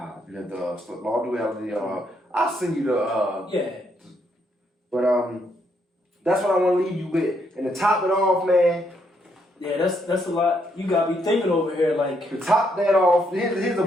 you have the law of duality. I'll send you the But that's what I want to leave you with. And to top it off, man. Yeah, that's a lot. You gotta be thinking over here, like. To top that off, here's a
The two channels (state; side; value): normal; both; correlation 0.75